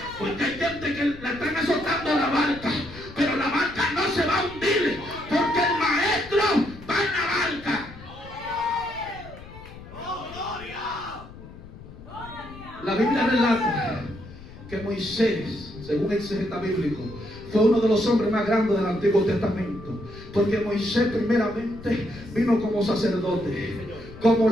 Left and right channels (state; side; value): noise; left; rumble, 16 dB below the sound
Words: porque hay gente que la están azotando la barca, pero la barca no se va a hundir, porque el maestro va en la barca. La Biblia relata que Moisés, según el exegeta bíblico, fue uno de los hombres más grandes del Antiguo Testamento, porque Moisés primeramente vino como sacerdote, como